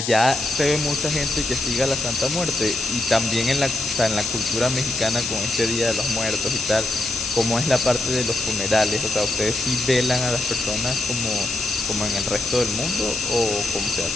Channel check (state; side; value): noise; left; hiss, 3 dB below the sound